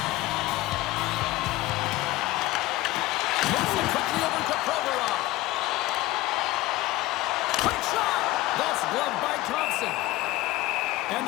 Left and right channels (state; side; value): quieter; right; 17.8 dB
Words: Moves it quickly over to Provorov. Quick shot! That's gloved by Thompson. And